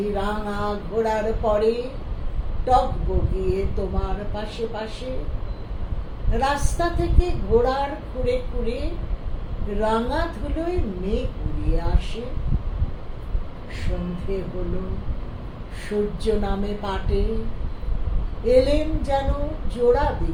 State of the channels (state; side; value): identical; both; correlation 1.00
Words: রাঙা ঘোড়ার পরে, টক বগিয়ে তোমার পাশে পাশে। রাস্তা থেকে ঘোড়ার খুঁড়ে খুঁড়ে রাঙা ধুলোয় মেঘ উড়িয়ে আসে। সন্ধে হলো, সূর্য নামে পাটে, এলেন যেন জোড়া